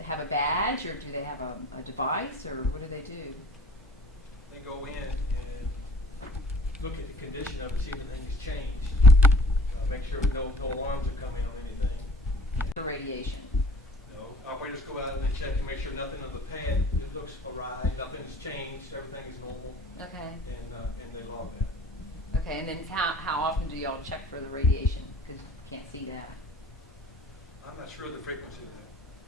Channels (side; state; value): both; normal; correlation 0.50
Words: have a badge, or do they have a device, or what do they do? They go in and look at the condition of it, see if anything's changed. Make sure no alarms are coming on anything. The radiation? Operators go out and they check to make sure nothing on the pad, it looks awry, nothing's changed, everything is normal, Okay, and they log that. okay, and then how often do y'all check for the radiation? Because you can't see that. I'm not sure of the frequency of